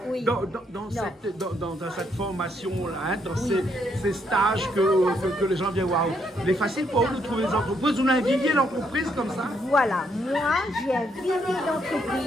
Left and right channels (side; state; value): both; normal; correlation 0.74